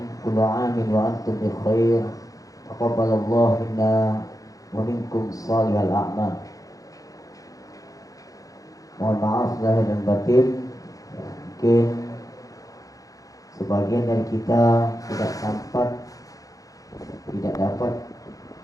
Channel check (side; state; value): right; late; 0.17 ms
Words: kullu amin wa antum bi khair, taqabbalallahu minna wa minkum shalihal a'mal. Mohon maaf lahir dan batin, mungkin sebagian dari kita tidak sempat, tidak dapat